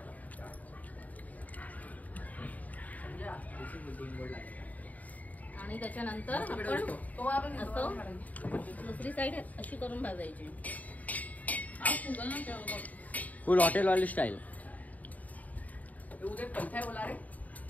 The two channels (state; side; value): late; right; 0.074 ms